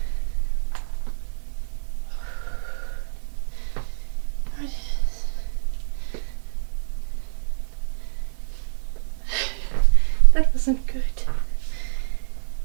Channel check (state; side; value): silent; left; 57 dB below the other